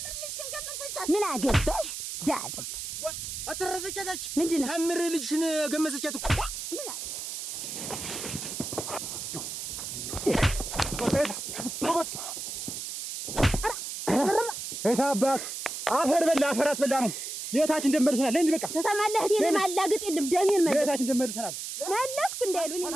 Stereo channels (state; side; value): noise; right; hiss, 6 dB below the sound